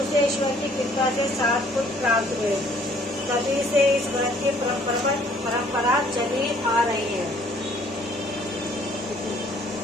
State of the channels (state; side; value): normal; both; correlation 0.60